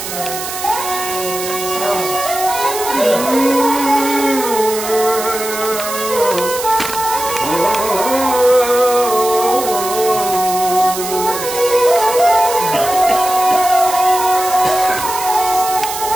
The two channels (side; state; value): right; noise; hiss, 7 dB below the sound